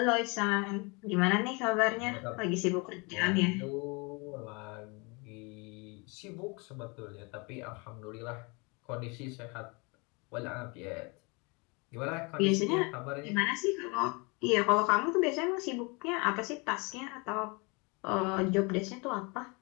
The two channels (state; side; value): quieter; right; 29.4 dB